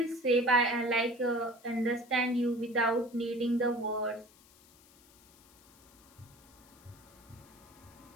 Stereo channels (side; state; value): left; noise; hiss, 26 dB below the sound